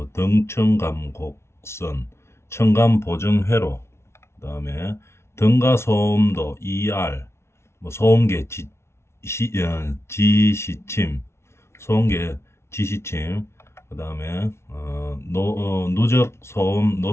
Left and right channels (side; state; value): right; late; 0.13 ms